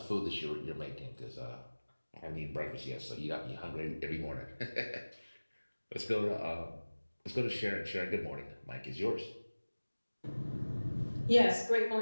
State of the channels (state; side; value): inverted; both; correlation -1.00